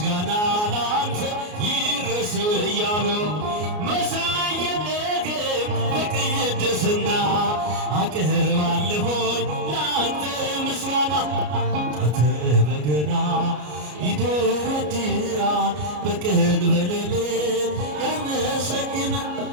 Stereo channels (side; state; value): left; late; 33 ms